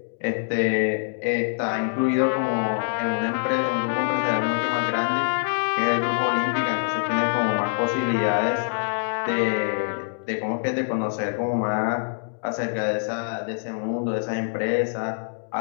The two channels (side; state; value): right; silent; digital silence